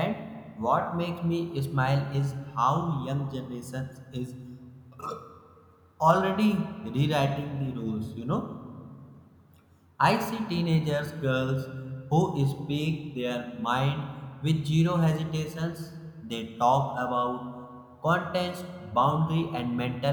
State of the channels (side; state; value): both; identical; correlation 1.00